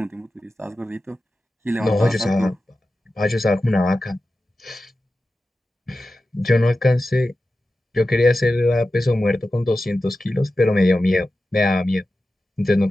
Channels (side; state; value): both; normal; correlation 0.93